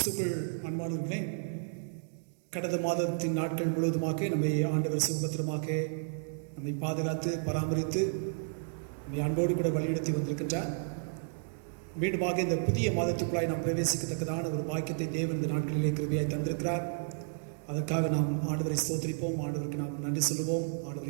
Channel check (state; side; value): silent; left; digital silence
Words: அன்பானவர்களே, கடந்த மாதத்தின் நாட்கள் முழுவதுமாக நம்மை ஆண்டவர் சுகபத்திரமாக நம்மை பாதுகாத்து பராமரித்து நம்மை அன்போடு கூட வழிநடத்தி வந்திருக்கின்றார். மீண்டுமாக இந்த புதிய மாதத்துக்குள்ளாய் நாம் பிரவேசிக்கத்தக்கதான ஒரு பாக்கியத்தை தேவன் இந்த நாட்களிலே கிருபையாய் தந்திருக்கிறார். அதற்காக நாம் ஆண்டவரை ஸ்தோத்திரிப்போம், ஆண்டவருக்கு நாம் நன்றி சொல்லுவோம்,